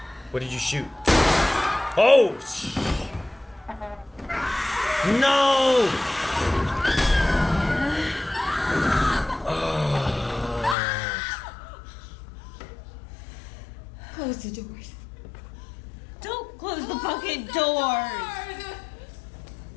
What did you shoot? Oh! No! Close the doors. Don't close the fucking doors!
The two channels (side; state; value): right; drops out; at 10.8 s